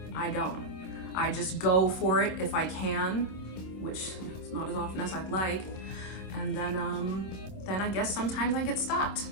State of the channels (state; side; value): late; right; 26 ms